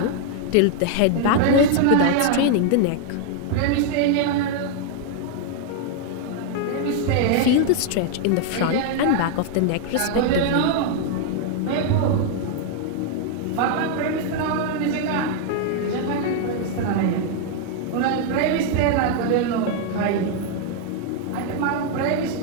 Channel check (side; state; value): both; different; correlation 0.00